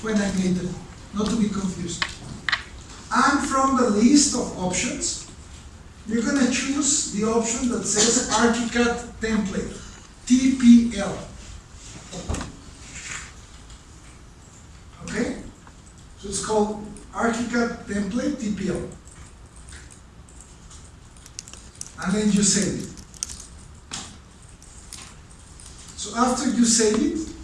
when I made them, not to be confused. And from the list of options, you're going to choose the option that says ArchiCAD template, TPL. Okay? So it's called ArchiCAD template, TPL. And then you save it. So after you save it,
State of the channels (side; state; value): both; identical; correlation 1.00